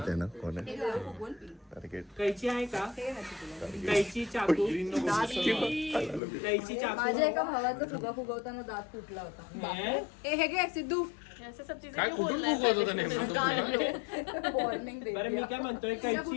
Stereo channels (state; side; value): drops out; right; at 6.2 s